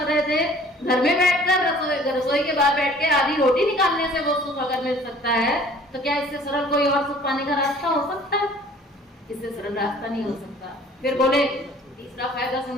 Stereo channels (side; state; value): both; normal; correlation 0.51